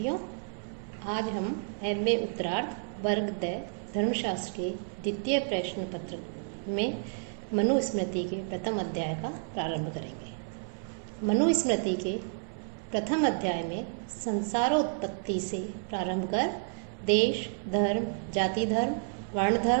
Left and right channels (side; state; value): left; silent; 56 dB below the other